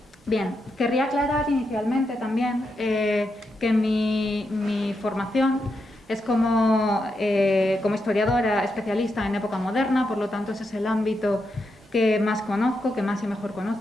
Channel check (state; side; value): normal; both; correlation 0.84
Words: querría aclarar inicialmente también que mi formación es como historiadora especialista en época moderna, por lo tanto ese es el ámbito que más conozco, que más y mejor